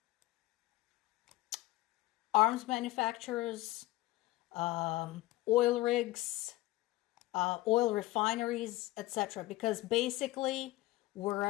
arms manufacturers, oil rigs, oil refineries, etc. Because basically,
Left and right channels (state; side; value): quieter; right; 18.1 dB